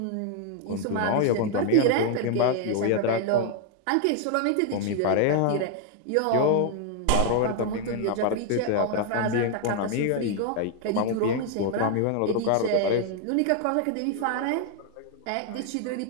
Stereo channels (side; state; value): both; different; correlation 0.00